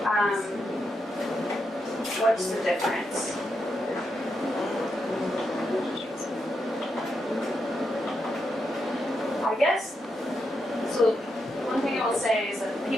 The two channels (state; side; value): normal; both; correlation 0.84